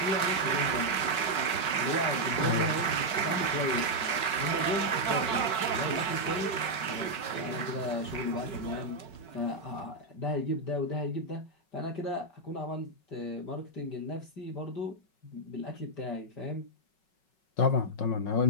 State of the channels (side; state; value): right; late; 5.4 ms